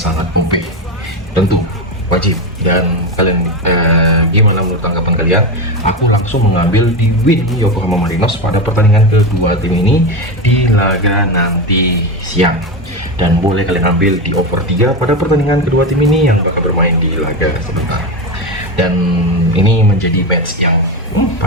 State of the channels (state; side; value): normal; both; correlation 0.16